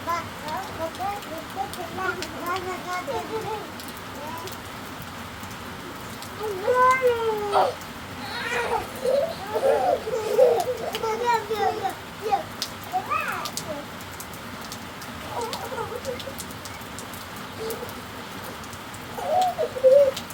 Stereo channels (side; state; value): both; identical; correlation 1.00